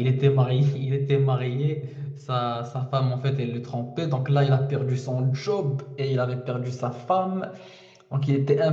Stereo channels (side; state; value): both; identical; correlation 1.00